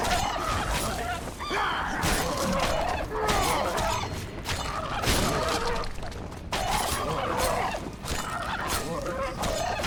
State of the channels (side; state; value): both; identical; correlation 1.00